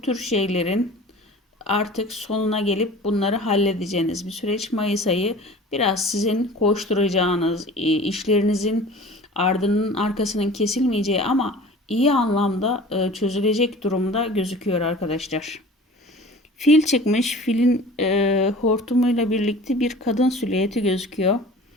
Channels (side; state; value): both; normal; correlation 0.42